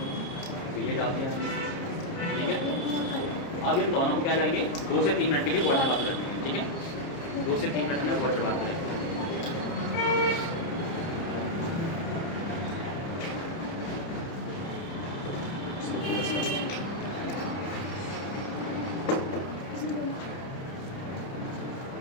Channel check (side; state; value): right; late; 30 ms